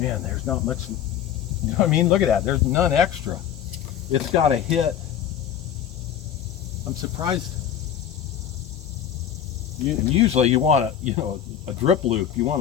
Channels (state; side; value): quieter; right; 9.6 dB